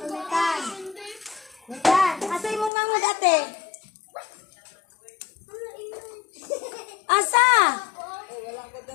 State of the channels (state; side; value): drops out; right; at 2.7 s